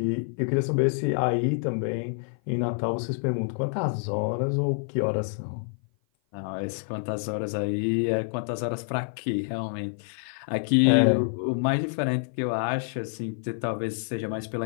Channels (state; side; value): silent; right; 55 dB below the other